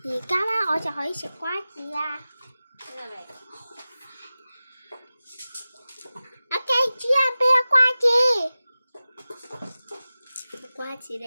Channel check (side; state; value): both; inverted; correlation -0.96